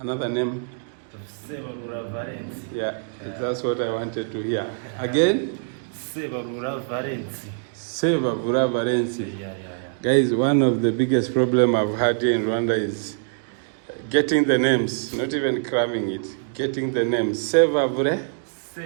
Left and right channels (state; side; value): silent; left; digital silence